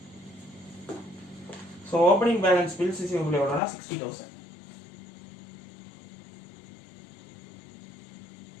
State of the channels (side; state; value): right; drops out; at 3.6 s